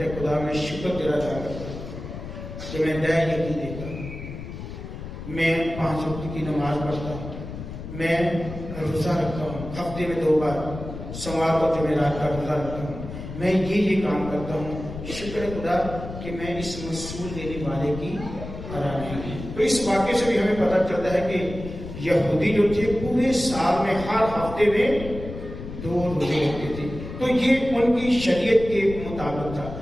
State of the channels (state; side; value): noise; left; rumble, 10 dB below the sound